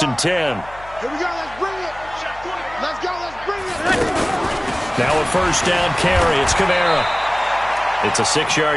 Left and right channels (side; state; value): left; noise; hum, 20 dB below the sound